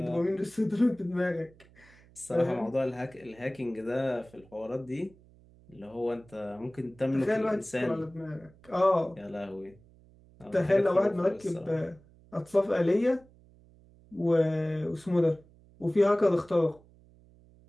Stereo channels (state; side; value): noise; right; hum, 26 dB below the sound